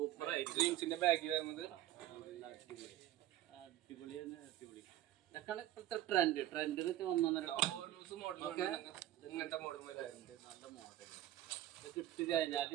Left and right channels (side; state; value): left; quieter; 13.8 dB